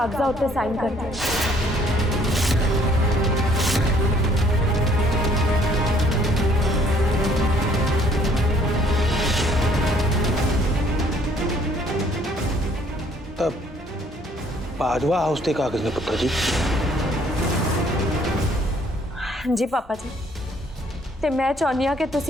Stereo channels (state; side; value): normal; both; correlation 0.62